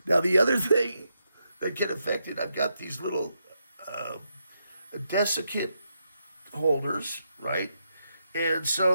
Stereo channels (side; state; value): both; inverted; correlation -0.82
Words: Now, the other thing that can affect it, I've got these little desiccant holders, right? And